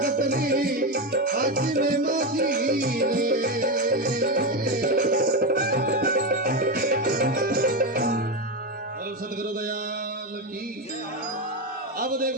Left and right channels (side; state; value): both; normal; correlation 0.13